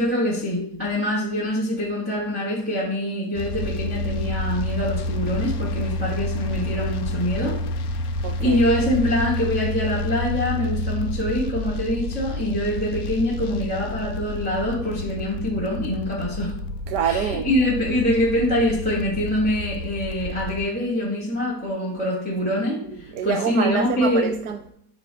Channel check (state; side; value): late; left; 4.3 ms